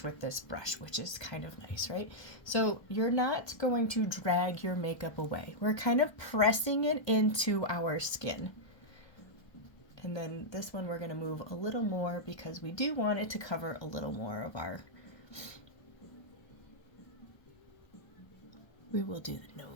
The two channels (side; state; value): right; late; 1.2 ms